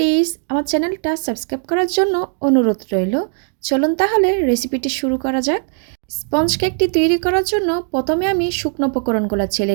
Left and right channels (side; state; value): left; silent; 58 dB below the other